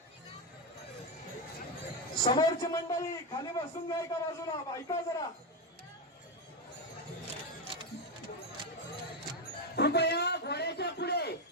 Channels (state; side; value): normal; both; correlation 0.09